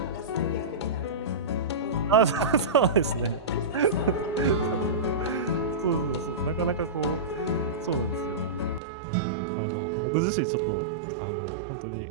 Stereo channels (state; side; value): drops out; left; at 8.8 s